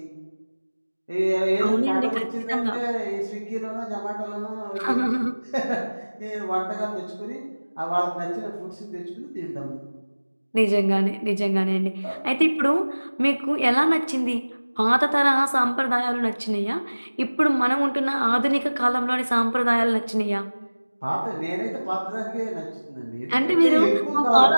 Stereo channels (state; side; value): inverted; both; correlation -1.00